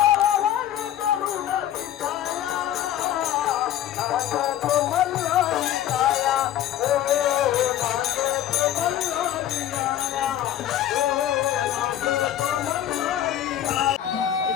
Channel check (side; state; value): right; quieter; 11.7 dB